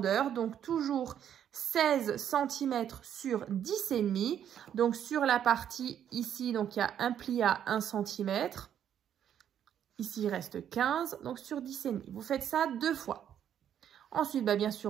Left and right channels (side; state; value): left; quieter; 9.6 dB